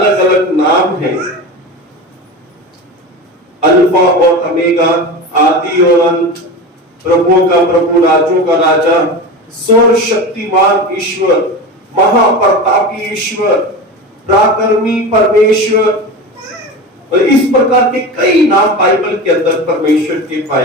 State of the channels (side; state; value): both; normal; correlation 0.27